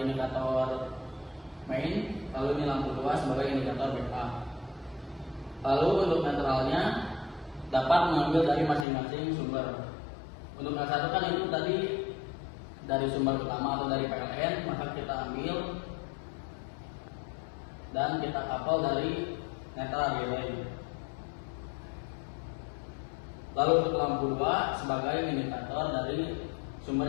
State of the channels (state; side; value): drops out; right; at 8.8 s